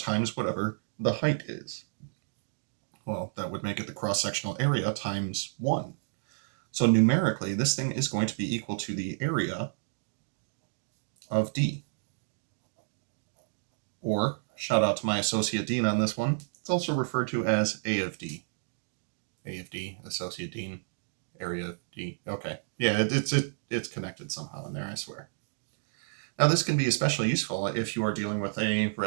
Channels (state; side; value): silent; left; digital silence